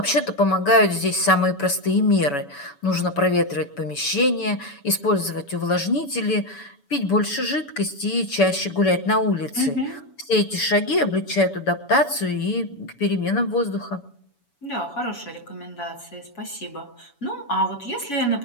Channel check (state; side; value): late; right; 7.0 ms